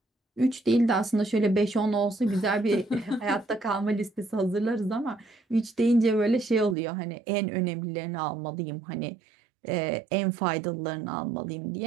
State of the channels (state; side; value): drops out; left; at 6.8 s